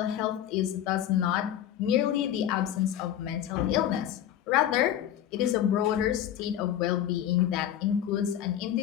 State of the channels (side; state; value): right; quieter; 10.9 dB